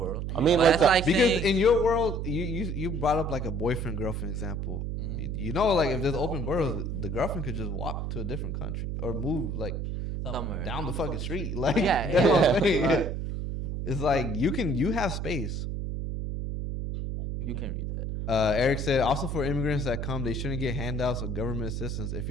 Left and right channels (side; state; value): right; noise; hum, 3 dB below the sound